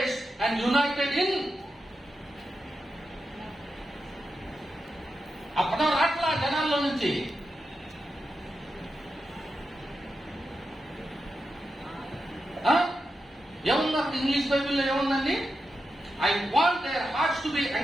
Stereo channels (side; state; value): both; normal; correlation 0.89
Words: and united in. ఆ పదం రాట్లా జనాల్లో నుంచి. ఏముంది అక్కడ ఇంగ్లీష్ బైబిల్లో ఏముందండి? I want their hearts to be